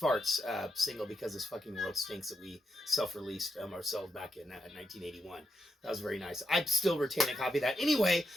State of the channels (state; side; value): normal; both; correlation 0.84